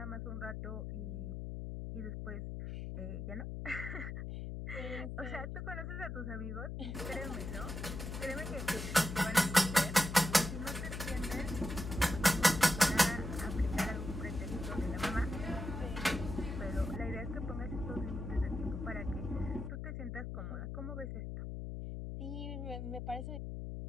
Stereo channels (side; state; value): left; noise; hum, 5 dB below the sound